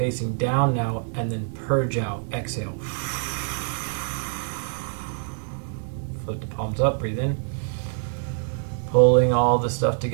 down now, and then purge out. Exhale. Flip the palms up, breathe in. Pulling all the stuff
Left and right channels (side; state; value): left; silent; digital silence